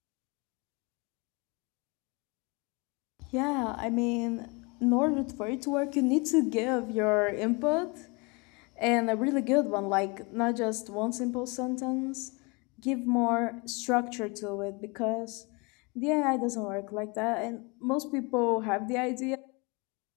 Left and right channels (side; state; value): right; quieter; 28.9 dB